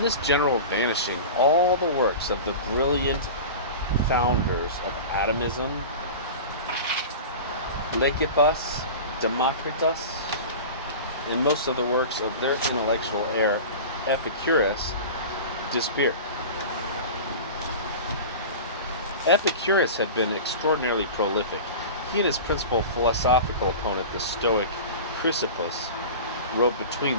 this general vanishing, all the works of the brilliant founders of atomism, Lysippus, Democritus, and most of the works of their intellectual heir, Epicurus, disappeared. Epicurus had been extraordinarily prolific. He and his principal philosophical opponent, the Stoic Chrysippus, wrote between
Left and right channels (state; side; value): inverted; both; correlation -0.32